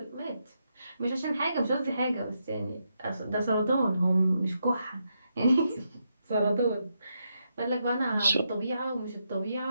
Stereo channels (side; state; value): both; inverted; correlation -0.82